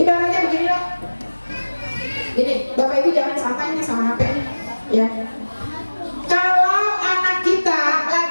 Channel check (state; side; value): inverted; both; correlation -1.00